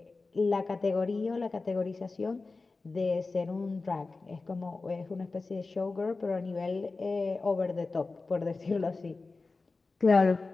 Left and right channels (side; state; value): right; quieter; 3.8 dB